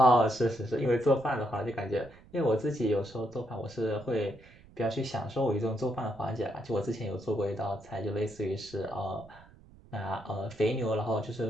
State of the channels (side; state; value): right; noise; rumble, 23 dB below the sound